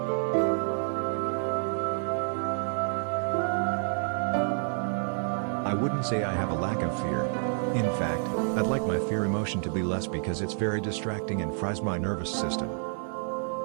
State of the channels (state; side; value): silent; left; 59 dB below the other